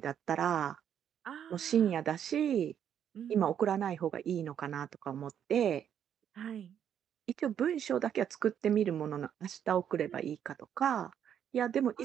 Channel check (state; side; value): quieter; left; 9.1 dB